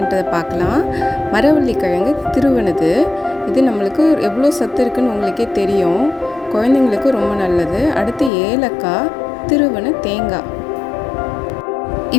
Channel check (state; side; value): drops out; right; at 8.3 s